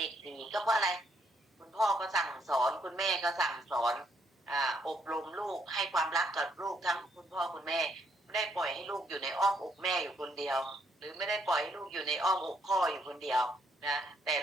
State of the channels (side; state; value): both; normal; correlation 0.72